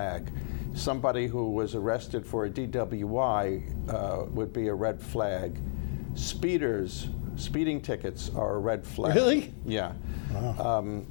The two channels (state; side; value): silent; right; 56 dB below the other